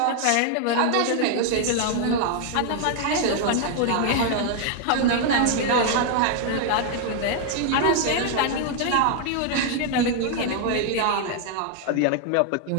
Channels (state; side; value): different; both; correlation 0.00